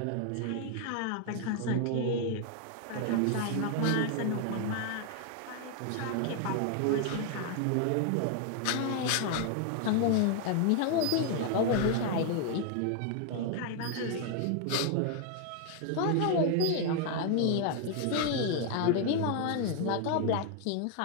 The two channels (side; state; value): both; different; correlation 0.00